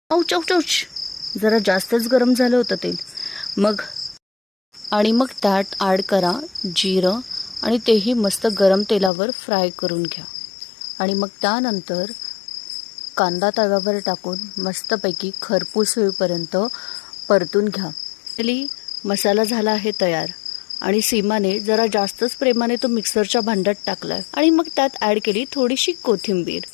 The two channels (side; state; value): right; drops out; at 9.1 s